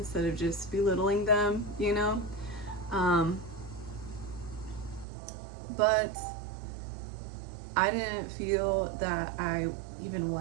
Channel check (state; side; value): drops out; left; at 5.1 s